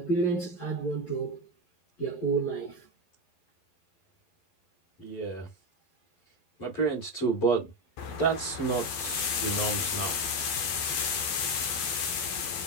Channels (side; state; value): right; late; 12 ms